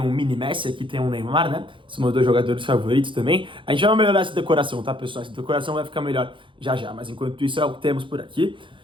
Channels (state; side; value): late; left; 0.24 ms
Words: um mini Messi, aqui tem um Neymar, né? São meus dois jogadores favoritos também. A gente vai melhorar essa decoração, tá, pessoal? Essa decoração vai ficar melhor já já, mas enquanto isso é o que temos por aqui.